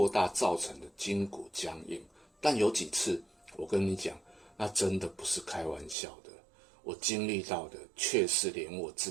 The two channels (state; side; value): drops out; left; at 6.0 s